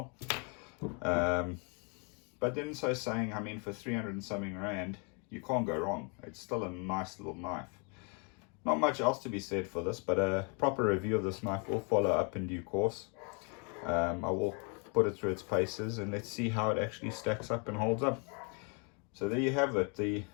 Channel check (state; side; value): quieter; right; 35.5 dB